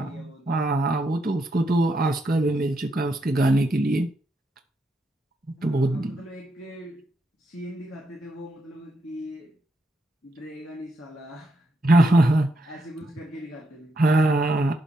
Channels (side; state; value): both; normal; correlation 0.80